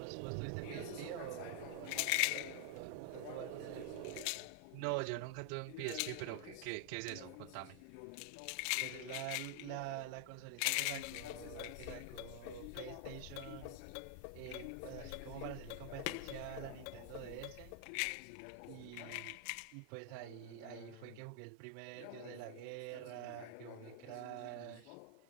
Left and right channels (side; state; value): both; different; correlation 0.00